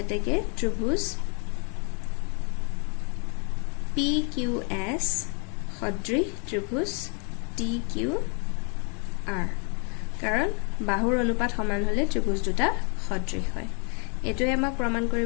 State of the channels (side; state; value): right; quieter; 38.0 dB